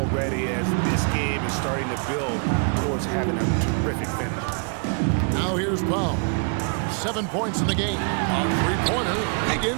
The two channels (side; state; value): left; quieter; 38.8 dB